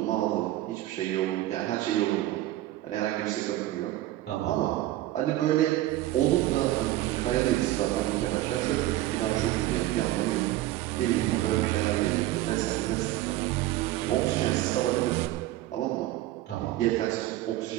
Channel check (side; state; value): left; quieter; 15.4 dB